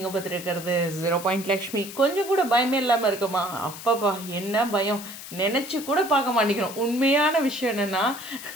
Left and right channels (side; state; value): left; noise; hiss, 12 dB below the sound